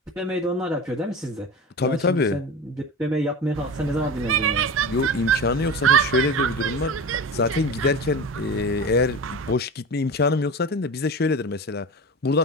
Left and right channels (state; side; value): normal; both; correlation 0.29